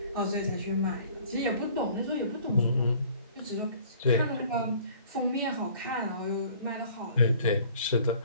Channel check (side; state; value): both; inverted; correlation -0.53